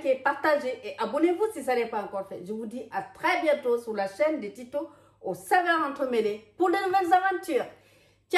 partagez et abonnez-vous si ça n'est pas encore fait. Je vous dis à très bientôt sur la chaîne de Tito aux saveurs entremêlées pour de nouvelles aventures.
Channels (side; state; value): both; identical; correlation 1.00